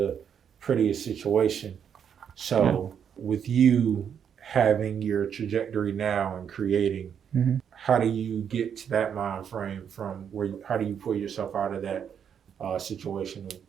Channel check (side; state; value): left; quieter; 8.0 dB